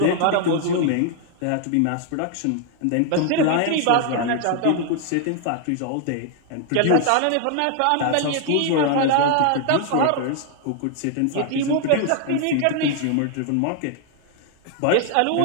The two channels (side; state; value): both; different; correlation 0.00